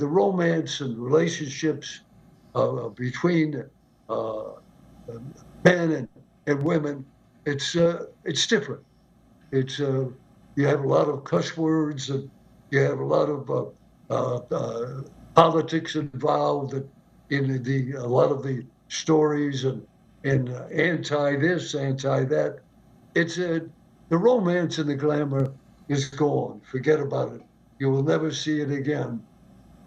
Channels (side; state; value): both; identical; correlation 1.00